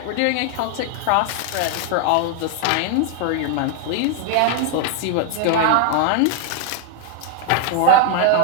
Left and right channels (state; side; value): different; both; correlation 0.00